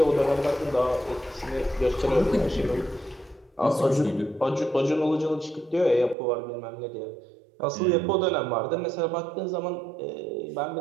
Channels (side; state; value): left; drops out; at 6.2 s